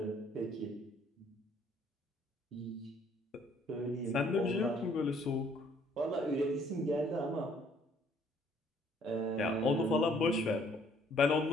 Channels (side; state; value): both; normal; correlation 0.62